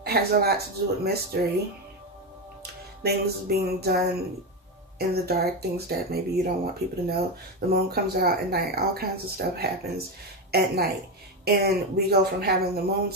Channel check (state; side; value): normal; both; correlation 0.13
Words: has a lot to do with mystery. Things being done in the dark. Things that maybe you don't want people to know. The moon comes out at night. All kinds of stuff happens at night. And we go from having the moon